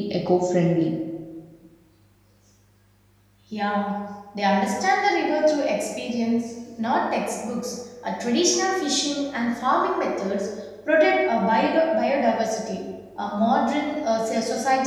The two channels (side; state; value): both; identical; correlation 1.00